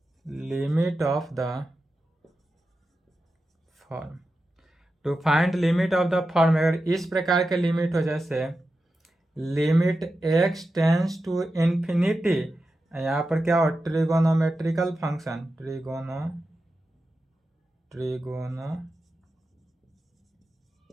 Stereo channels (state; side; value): normal; both; correlation 0.91